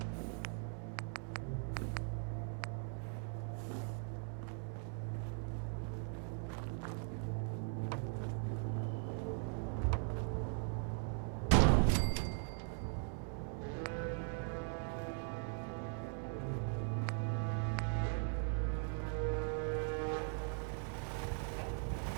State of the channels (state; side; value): silent; left; 51 dB below the other